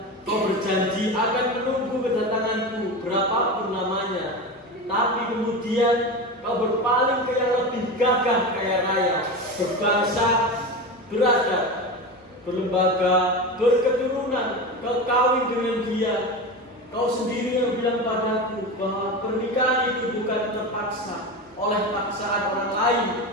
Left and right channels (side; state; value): both; normal; correlation 0.24